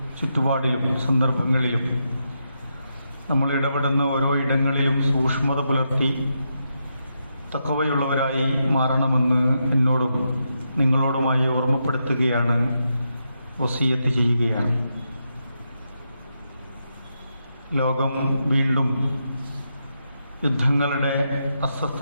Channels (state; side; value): inverted; both; correlation -0.84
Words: ചുറ്റുപാടിലും സന്ദർഭങ്ങളിലും നമ്മൾ ഇടപെടുന്ന ഓരോ ഇടങ്ങളിലും സൂക്ഷ്മത പുലർത്തി തഖ്വയുള്ളവരായി മാറണമെന്ന് എന്നോടും നിങ്ങളോടുമായി ഓർമ്മപ്പെടുത്തുകയാണ്, വസിയത്ത് ചെയ്യുകയാണ്. ലോകം വീണ്ടും യുദ്ധങ്ങളുടെ